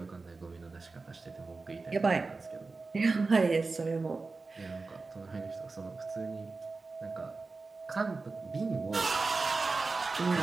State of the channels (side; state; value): left; quieter; 3.9 dB